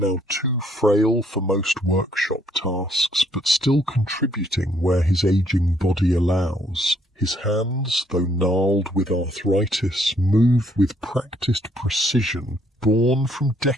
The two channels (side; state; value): both; normal; correlation 0.68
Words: too frail for most workshop tasks, but still contributing where his aging body allows. His hands, though gnarled with arthritis, move with practised precision, born from